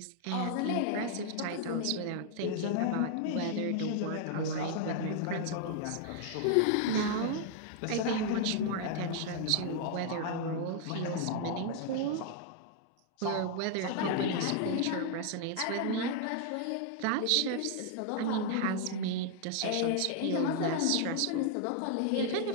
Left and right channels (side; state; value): both; different; correlation 0.00